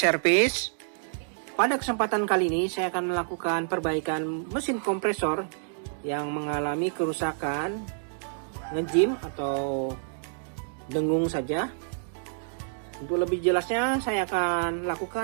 pada kesempatan kali ini saya akan melakukan perbaikan mesin kompresor yang mengalami kerusakan ngejim atau dengung saja. Untuk lebih jelasnya saya akan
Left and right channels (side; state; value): left; silent; digital silence